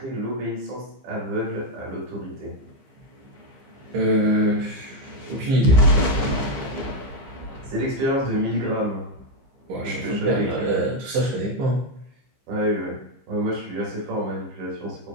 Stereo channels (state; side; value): late; left; 15 ms